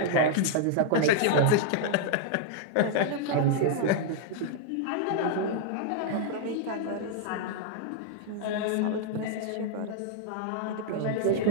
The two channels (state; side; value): different; both; correlation -0.01